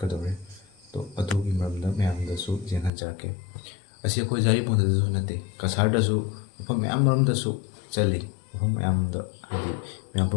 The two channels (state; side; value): drops out; right; at 2.9 s